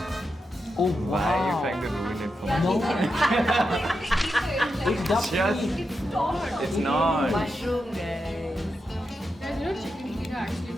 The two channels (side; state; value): both; normal; correlation 0.87